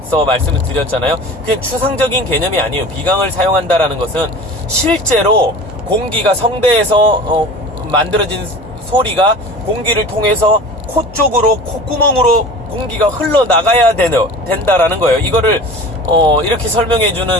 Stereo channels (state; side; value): normal; both; correlation 0.38